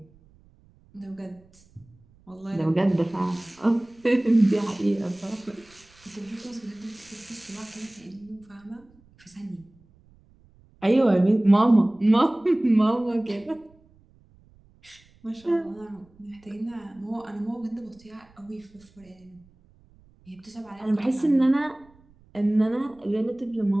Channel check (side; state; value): right; noise; rumble, 29 dB below the sound